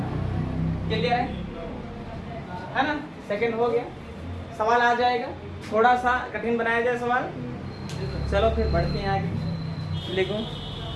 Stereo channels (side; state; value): both; identical; correlation 1.00